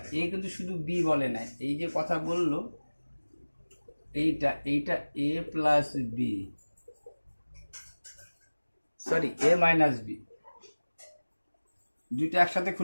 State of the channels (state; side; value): inverted; both; correlation -1.00